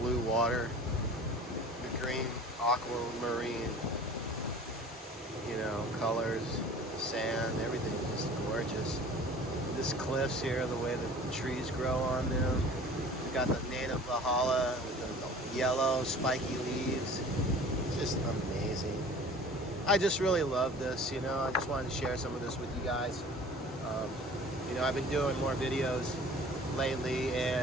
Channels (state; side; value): normal; both; correlation 0.45